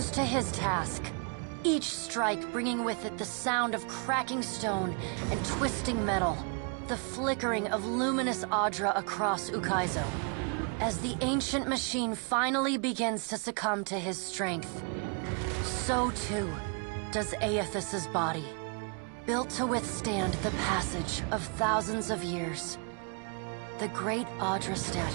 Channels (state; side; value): quieter; left; 38.6 dB